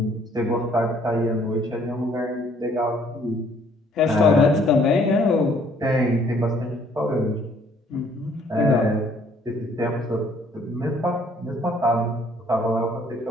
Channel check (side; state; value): both; normal; correlation 0.62